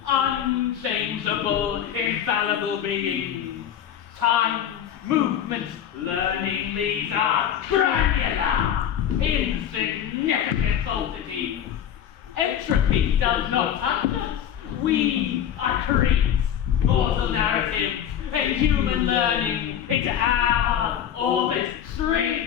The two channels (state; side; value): quieter; right; 9.7 dB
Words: unchangeable, infallible beings. Time, movement, learning, these are granular, insignificant falsities. Entropy does not touch us. We are creeps, mortal narratives, and human learning into our orbit.